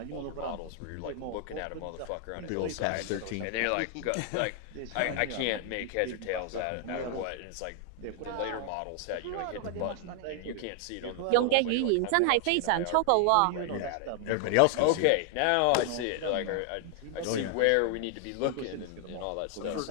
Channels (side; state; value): both; different; correlation 0.00